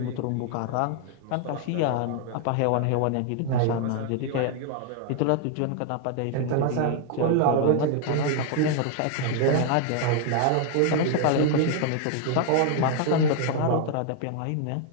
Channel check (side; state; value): both; different; correlation 0.00